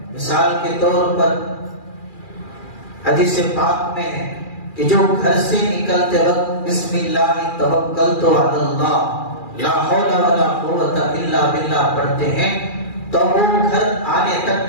مثال کے طور پر حدیث پاک میں ہے کہ جو گھر سے نکلتے وقت بسم اللہ توکلت علی اللہ لا حول ولا قوت الا باللہ پڑھتے ہیں تو وہ گھر آنے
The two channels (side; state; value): right; late; 2.4 ms